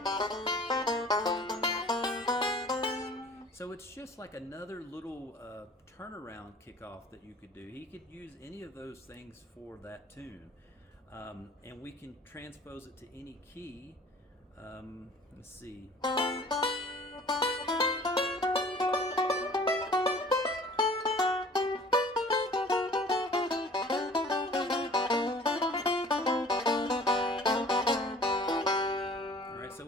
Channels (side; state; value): both; normal; correlation 0.49